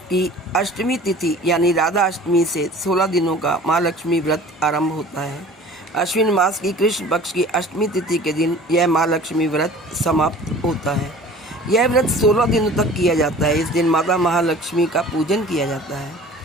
की अष्टमी तिथि यानी राधा अष्टमी से 16 दिनों का महालक्ष्मी व्रत आरंभ होता है। अश्विन मास की कृष्ण पक्ष की अष्टमी तिथि के दिन यह महालक्ष्मी व्रत समाप्त होता है। यह व्रत 16 दिनों तक किया जाता है। इस दिन माता महालक्ष्मी का पूजन किया जाता है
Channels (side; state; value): both; normal; correlation 0.45